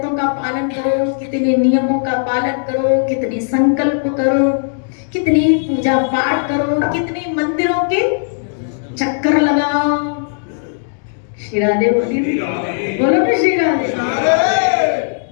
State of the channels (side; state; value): right; silent; digital silence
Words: का पालन करो, कितने नियमों का पालन करो, कितने संकल्प करो, कितने पूजा पाठ करो, कितने मंदिरों के चक्कर लगाओ, श्री राधे बोलिए, बोलो ना श्री राधे।